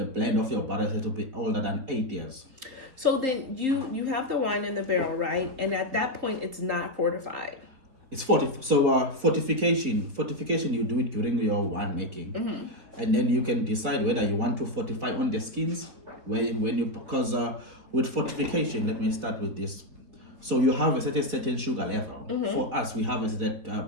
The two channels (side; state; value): left; late; 4.1 ms